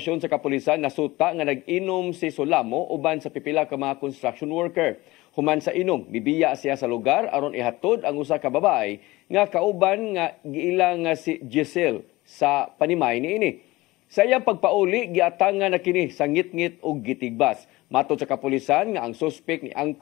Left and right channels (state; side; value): quieter; right; 19.8 dB